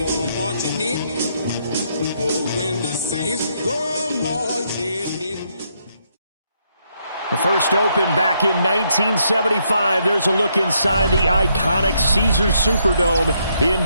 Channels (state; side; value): inverted; both; correlation -0.75